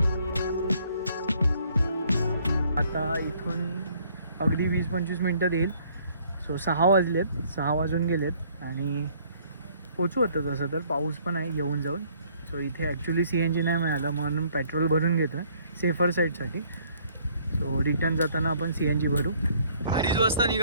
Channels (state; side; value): inverted; both; correlation -0.62